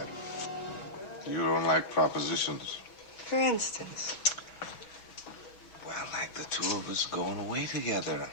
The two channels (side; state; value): right; late; 6.2 ms